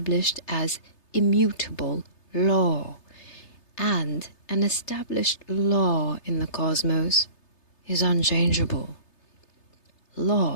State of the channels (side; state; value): right; late; 3.3 ms